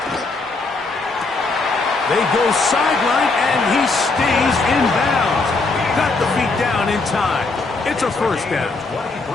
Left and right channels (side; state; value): right; quieter; 3.7 dB